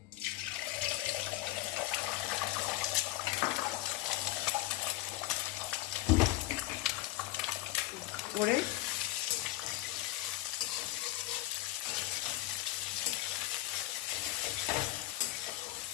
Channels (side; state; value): right; quieter; 17.0 dB